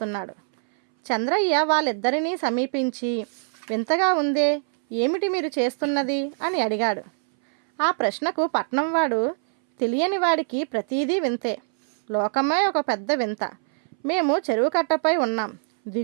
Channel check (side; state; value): left; silent; 61 dB below the other